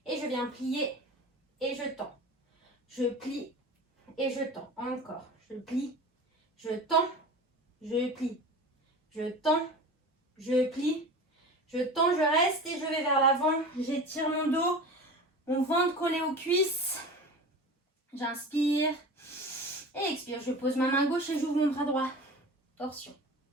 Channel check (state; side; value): normal; both; correlation 0.34